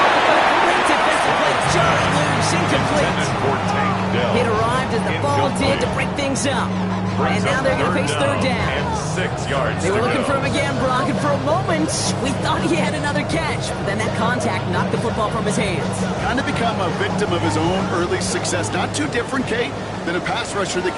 Complete defensive play. Just loose, incomplete. Intended for Tank Dell. It arrived as the ball did to break things up. And now they're going to face third down. And 6 yards They were to looking go. for him again, Brock, and for a moment, we thought he had another catch. But then that contact knocked the football from his hands. Kind of become a victim of his own early success. Not too different, Kate, than a pass rusher that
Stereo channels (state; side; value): identical; both; correlation 1.00